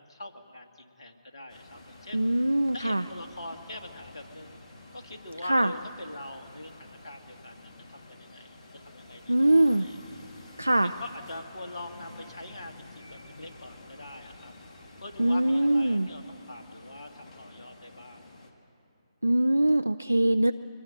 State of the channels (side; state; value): both; inverted; correlation -0.97